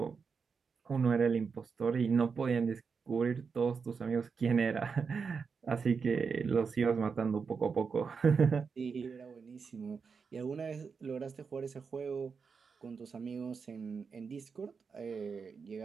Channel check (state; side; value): quieter; left; 5.5 dB